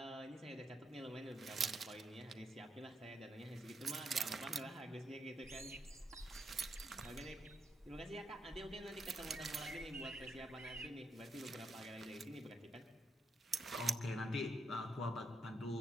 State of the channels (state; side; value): normal; both; correlation 0.80